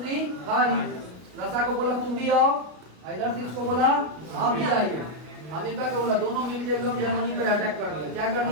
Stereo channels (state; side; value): late; left; 33 ms